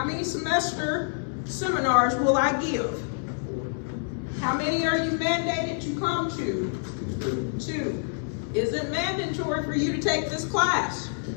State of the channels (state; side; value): silent; right; digital silence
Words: many semester seminars will I give? How many are you mandated to come to? 2. Is it mandatory for you to take this class?